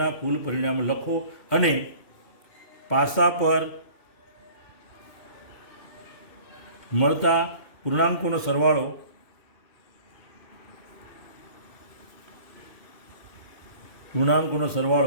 કુલ પરિણામો લખો અને પાસા પર મળતા પૂર્ણાંકોનો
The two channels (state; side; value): late; right; 2.6 ms